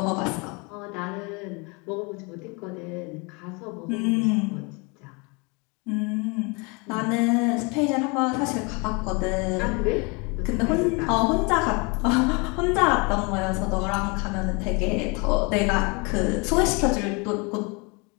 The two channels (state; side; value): quieter; right; 30.0 dB